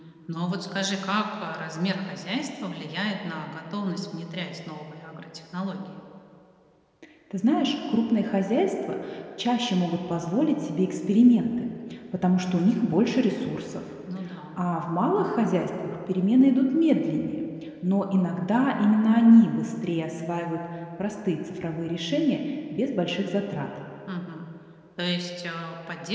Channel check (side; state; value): both; identical; correlation 1.00